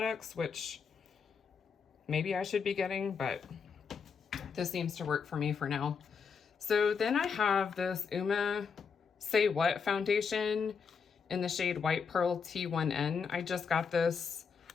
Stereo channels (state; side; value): quieter; right; 6.0 dB